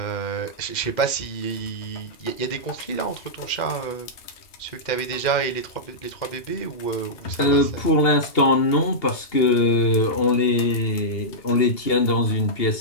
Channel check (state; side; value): late; right; 2.8 ms